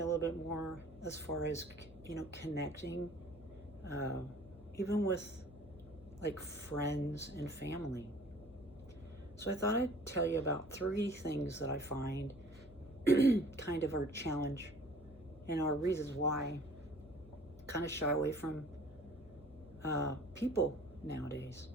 a little bit more as far as, connecting, even with like friends and family. So I thought I'd tell you about 3 things that I find kind of our challenge and our reasons why kind of shy away from people nowadays.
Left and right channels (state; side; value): normal; both; correlation 0.51